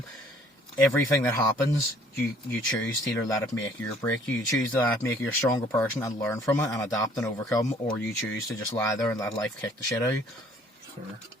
Everything that happens, you choose to either let it make you or break you. You choose to let it make you a stronger person and learn from it and adapt and overcome, or you choose to just lie there and let life kick the shit out of you. Sure.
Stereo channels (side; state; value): both; normal; correlation 0.59